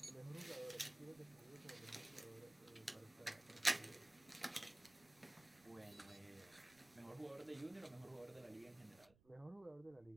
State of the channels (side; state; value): right; noise; rumble, 26 dB below the sound